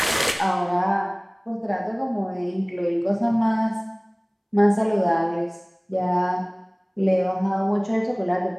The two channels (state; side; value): identical; both; correlation 1.00